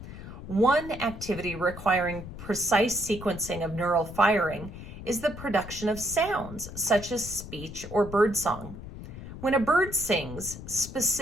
One activity requiring precise sequencing of neural firing is the production of sounds, such as speech or birdsong. When a bird sings,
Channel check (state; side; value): noise; left; rumble, 12 dB below the sound